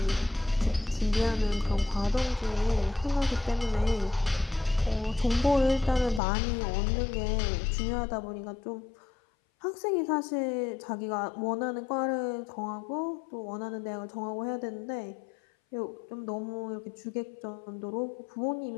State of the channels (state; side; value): drops out; right; at 6.2 s